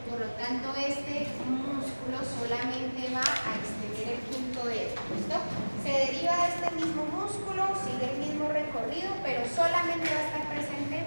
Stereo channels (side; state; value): both; inverted; correlation -1.00